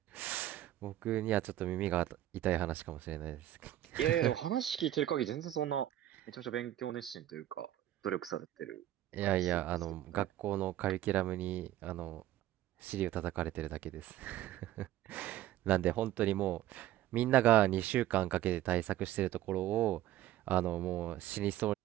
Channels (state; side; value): quieter; left; 13.4 dB